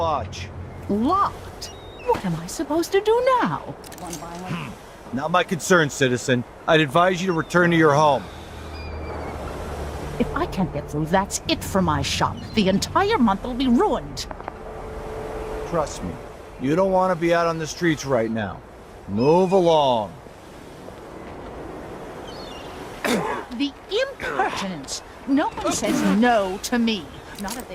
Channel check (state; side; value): identical; both; correlation 1.00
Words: Locked? What am I supposed to do now? Not my concern, citizen. I'd advise you to return to your home. If I can't get through, that's it for my shop. The entire month will be ruined. Trust me, you don't want to be out on the streets right now. Move along. The impertinence! No one says no to me. Not if they